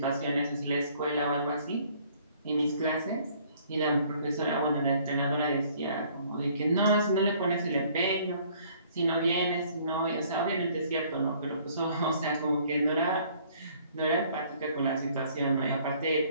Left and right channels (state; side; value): inverted; both; correlation -0.59